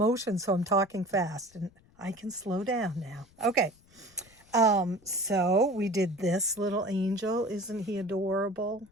So I'm talking fast and I can slow down now. Okay. So we did this little angel. Isn't he adorable?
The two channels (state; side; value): noise; left; rumble, 29 dB below the sound